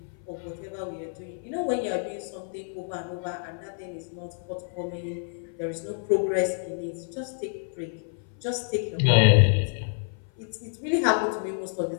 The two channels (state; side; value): silent; right; 56 dB below the other